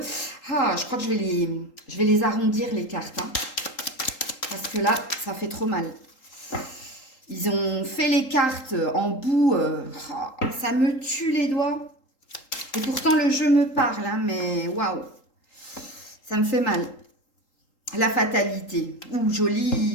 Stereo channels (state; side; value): late; right; 3.8 ms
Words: je crois que je vais les arrondir les cartes, hein, parce que là, ça fait trop mal. Ils ont fait les cartes en bout, ça me tue les doigts. Et pourtant, le jeu me parle, hein, mais waouh, ça me fait mal. La fatalité, ouh,